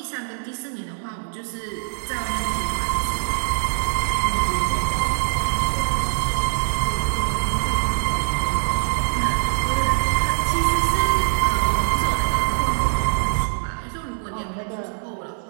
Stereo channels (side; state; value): left; silent; 64 dB below the other